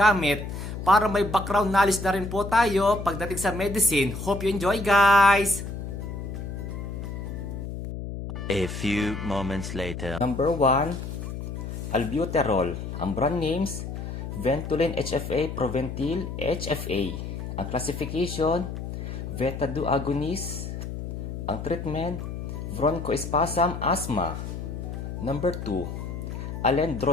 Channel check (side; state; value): left; noise; hum, 7 dB below the sound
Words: para may background knowledge na rin po tayo pagdating sa medicine. Hope you enjoy guys! A few moments later. Number 1, albuterol. Ang brand names, Ventolin HFA, Proventil HFA. Ang classification, Beta-2 agonist. Ang treatment, bronchospasm, asthma. Number 2,